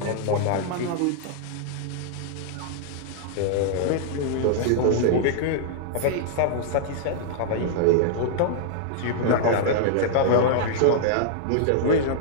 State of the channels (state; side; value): different; both; correlation -0.01